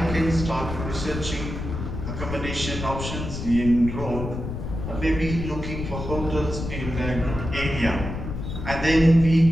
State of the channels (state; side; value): noise; left; rumble, 6 dB below the sound